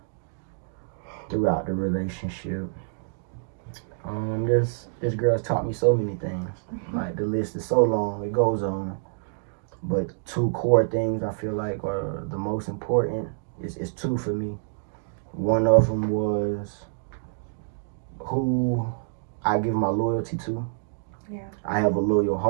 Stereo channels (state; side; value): silent; left; digital silence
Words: throughout the relationship. This girl's taught me so many things. Like, the list is so long, it goes on. But 2 core things I feel like are the most important. It's 2 for me. One of them was who I give my loyalty to. Yeah. I have a loyal